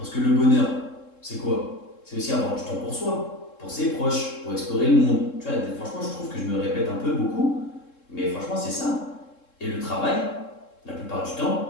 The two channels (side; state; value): right; late; 3.7 ms